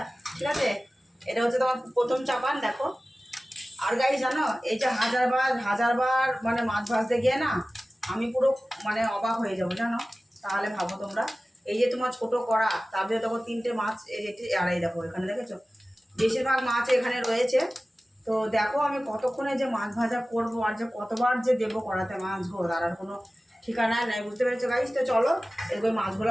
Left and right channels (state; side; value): normal; both; correlation 0.97